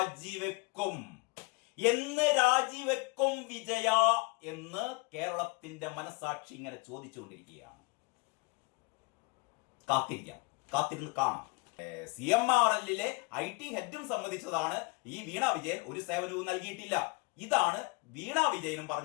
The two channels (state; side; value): quieter; right; 27.2 dB